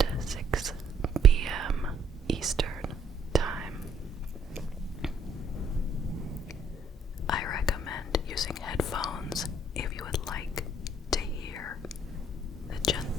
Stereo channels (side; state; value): both; normal; correlation 0.65